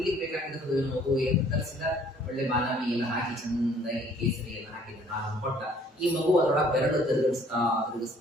ಬೇಕಾಗಿರ್ತದೆ ಮಗು. ಏನು ತರಿಸಿದ? ಒಳ್ಳೆ ಬಾದಾಮಿ ಎಲ್ಲ ಹಾಕಿ ಚಂದಾಗಿ ಕೇಸರಿ ಎಲ್ಲ ಹಾಕಿದ ಹಾಲು ಕೊಟ್ಟ. ಈ ಮಗು ಅದರೊಳಗೆ ಬೆರಳು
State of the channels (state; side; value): normal; both; correlation 0.58